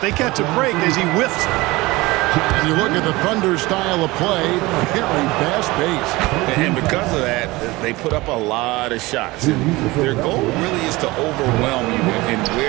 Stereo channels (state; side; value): quieter; left; 21.1 dB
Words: they catch a break as he whiffs. And you look at the Thunder style of play, very fast-paced. And because of that, they put up a lot of shots. And their goal really is to overwhelm you and